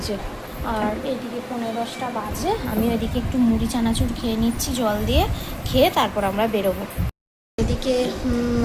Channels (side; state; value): both; identical; correlation 1.00